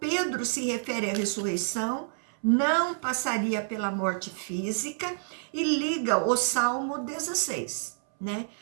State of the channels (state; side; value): silent; left; 59 dB below the other